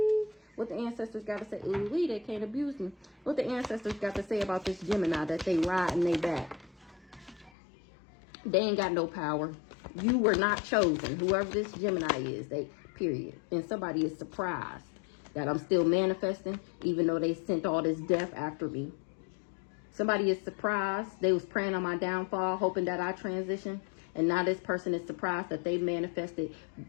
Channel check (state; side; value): drops out; right; at 7.5 s